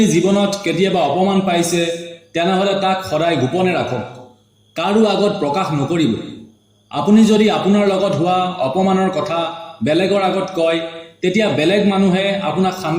জীৱনত কেতিয়াবা অপমান পাইছে তেনেহ'লে তাক সদায় গোপনে ৰাখক, কাৰো আগত প্ৰকাশ নকৰিব। আপুনি যদি আপোনাৰ লগত হোৱা অপমানৰ কথা বেলেগৰ আগত কয় তেতিয়া বেলেগ মানুহে আপোনাক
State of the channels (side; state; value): both; identical; correlation 1.00